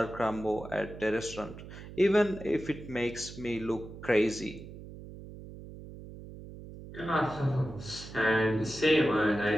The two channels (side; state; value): right; noise; hum, 14 dB below the sound